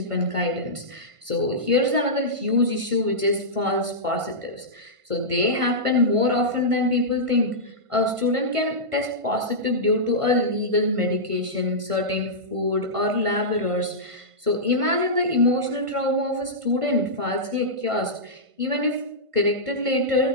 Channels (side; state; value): left; late; 1.5 ms